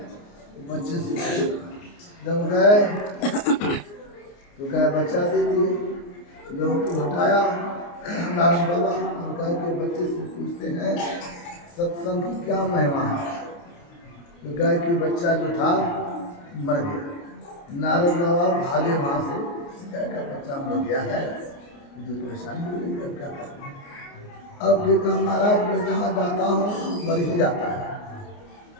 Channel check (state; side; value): late; right; 29 ms